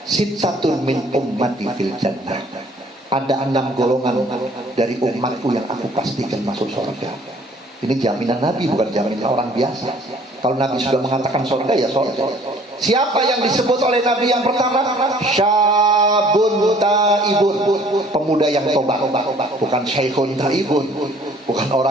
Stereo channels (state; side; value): normal; both; correlation 0.56